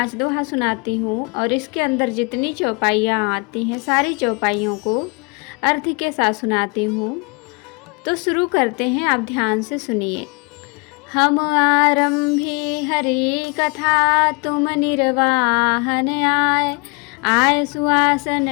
दोहा सुनाती हूँ और इसके अंदर जितनी चौपाइयाँ आती हैं सारी चौपाइयों को अर्थ के साथ सुनाती हूँ। तो शुरू करते हैं, आप ध्यान से सुनिए। हम आरंभी हरि कथा, तुम निर्वाहन आए। आय सुआसन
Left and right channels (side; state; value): right; quieter; 30.8 dB